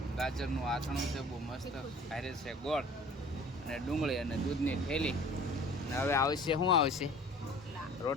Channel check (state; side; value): normal; both; correlation 0.47